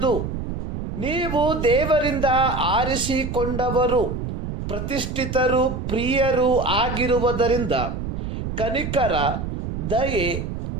ನೀವು ದೇವರಿಂದ ಆರಿಸಿಕೊಂಡವರು, ಪ್ರತಿಷ್ಠಿತರು, ಪ್ರಿಯರು ಆಗಿರುವುದರಿಂದ ಕನಿಕರ, ದಯೆ,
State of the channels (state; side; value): noise; right; rumble, 5 dB below the sound